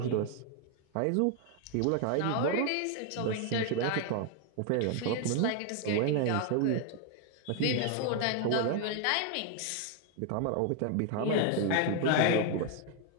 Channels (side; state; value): both; different; correlation 0.00